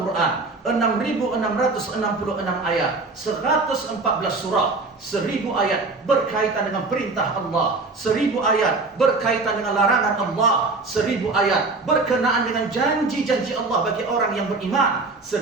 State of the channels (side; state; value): left; quieter; 3.6 dB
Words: 6.666 ayat, 114 surah, 1.000 ayat berkaitan dengan perintah Allah, 1.000 ayat berkaitan dengan larangan Allah, 1.000 ayat berkenaan dengan janji-janji Allah bagi orang yang beriman,